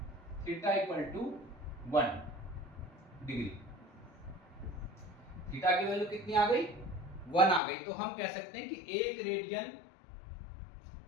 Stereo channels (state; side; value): drops out; right; at 7.6 s